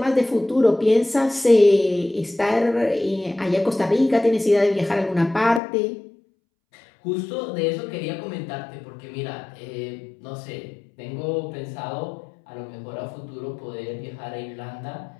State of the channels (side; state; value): right; drops out; at 5.6 s